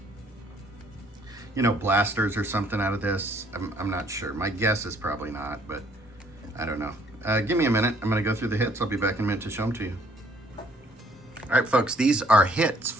blasters or something out of this. I'm not sure. My guess is probably not, but I don't know. Give me a minute. I'm going to go through the hits. I'll be back in a minute to show them to you. All right, folks, these are hits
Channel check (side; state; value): both; normal; correlation 0.62